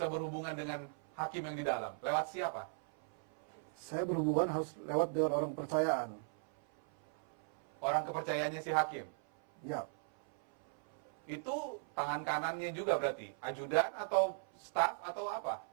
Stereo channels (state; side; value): silent; left; 52 dB below the other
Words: berhubungan dengan hakim yang di dalam? Lewat siapa? Saya berhubungan harus lewat dengan orang kepercayaan. Orang kepercayaannya si hakim? Ya. Itu tangan kanannya juga berarti? Ajudan atau staf atau apa?